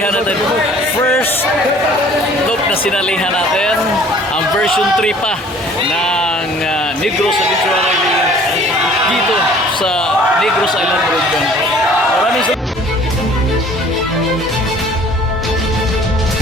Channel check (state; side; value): normal; both; correlation 0.52